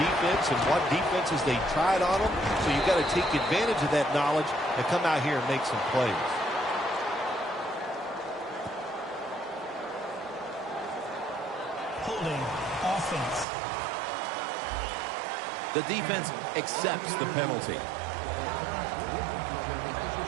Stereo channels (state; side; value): drops out; left; at 13.5 s